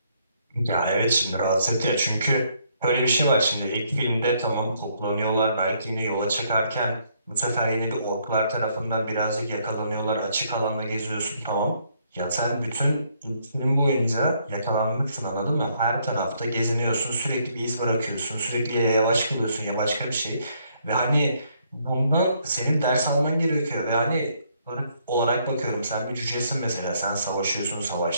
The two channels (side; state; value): both; inverted; correlation -0.70